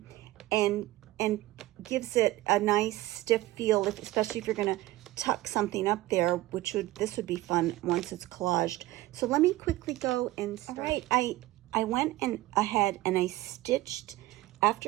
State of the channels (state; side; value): quieter; left; 17.2 dB